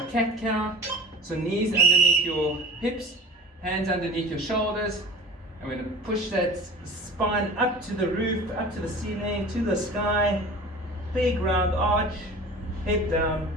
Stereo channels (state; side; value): normal; both; correlation 0.39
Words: cat-cow. So knees underneath your hips, hands underneath your shoulders. I'm going to push that spine up to the roof, up to the ceiling, to the sky. Big round arch, head down.